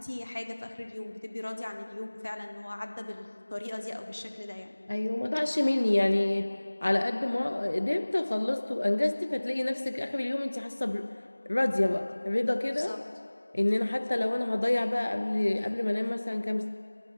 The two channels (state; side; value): inverted; both; correlation -1.00